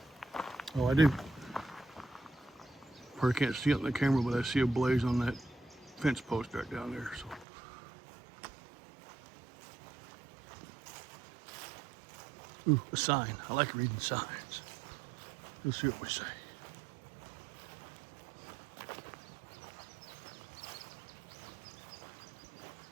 Oh, I do. Probably can't see it on the camera, but I see a blaze on that fence post right down there. So, ooh, a sign. I like reading signs. Let's see what we say.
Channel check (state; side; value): drops out; left; at 7.5 s